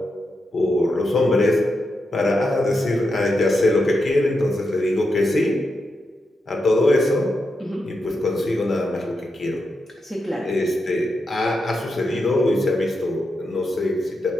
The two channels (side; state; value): both; normal; correlation 0.86